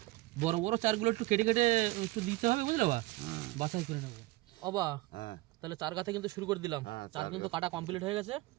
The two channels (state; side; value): quieter; left; 20.0 dB